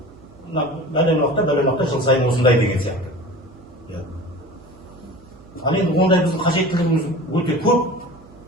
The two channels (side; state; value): right; noise; hum, 25 dB below the sound